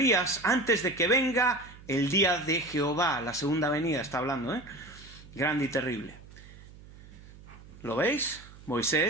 antes de que venga el día de Jehová. La segunda venida está hablando, ¿eh? Grande y terrible. ¿Lo veis?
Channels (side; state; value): right; noise; hum, 20 dB below the sound